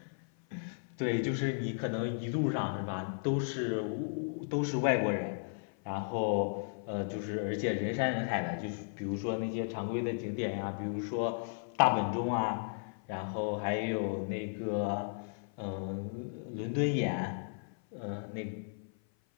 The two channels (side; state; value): right; silent; 55 dB below the other